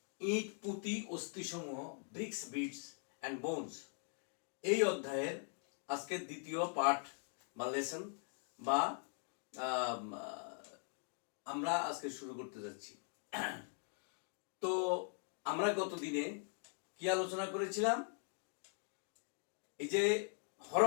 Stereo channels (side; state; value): right; silent; 50 dB below the other